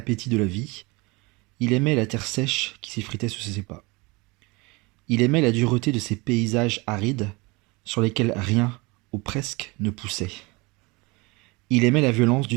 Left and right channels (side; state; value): left; quieter; 25.6 dB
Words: de la vie, il aimait la terre sèche qui s'effritait sous ses pas. Il aimait la dureté de ces paysages arides sur lesquels rien, ou presque, ne poussait. Il aimait la violence